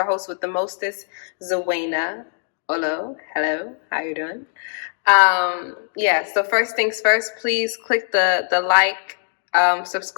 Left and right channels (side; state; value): right; silent; 65 dB below the other